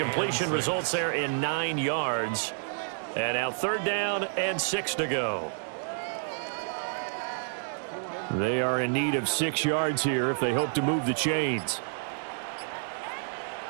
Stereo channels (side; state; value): left; silent; digital silence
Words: results there in 9 yards. And now 3rd down and 6 to go. They are in need of 6 yards here if they hope to move the chains.